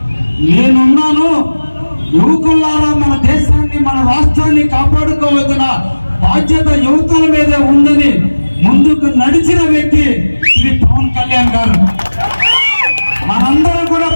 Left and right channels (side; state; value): both; inverted; correlation -1.00